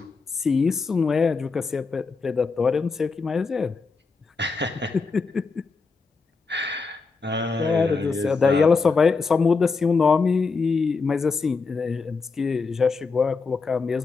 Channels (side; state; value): right; quieter; 4.5 dB